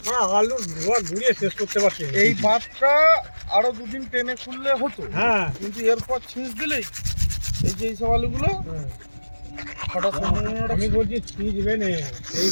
না আলু ধোয়া ঘুরিয়ে শেষ করতে পারছি এই বাঁধটা আরো দুদিন টেনে খুললে হতো, হ্যাঁ কিন্তু এরপর ছিঁচ দিলেই এই যে এইসব আলুগুলো হঠাৎ আমি বলছি সিজ বেনে এই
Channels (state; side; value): inverted; both; correlation -1.00